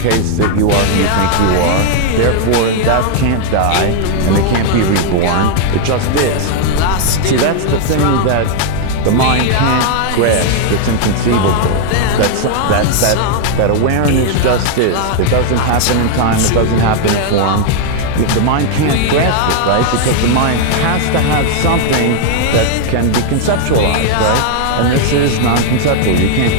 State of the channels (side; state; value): both; different; correlation 0.00